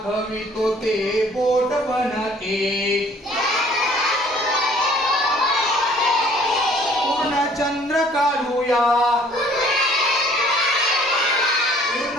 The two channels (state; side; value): normal; both; correlation 0.56